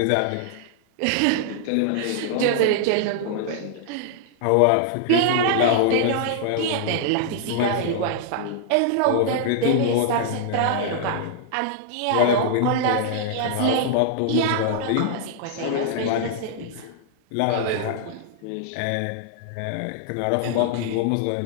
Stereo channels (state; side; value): different; both; correlation -0.01